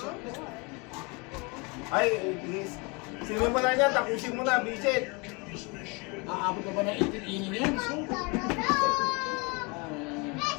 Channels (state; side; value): quieter; right; 29.2 dB